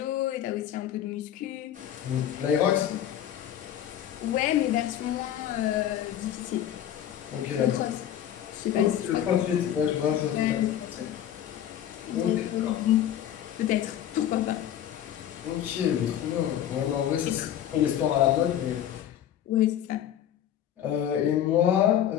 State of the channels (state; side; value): quieter; right; 10.8 dB